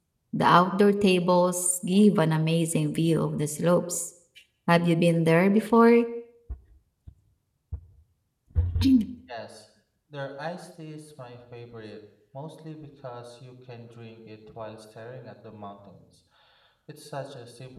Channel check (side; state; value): both; identical; correlation 1.00